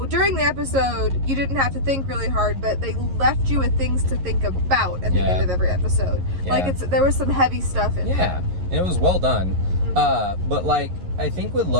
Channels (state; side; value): late; left; 11 ms